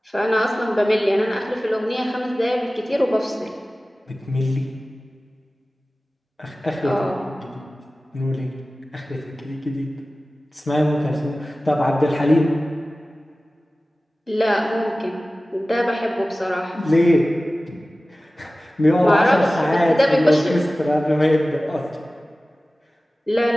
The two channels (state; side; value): normal; both; correlation 0.97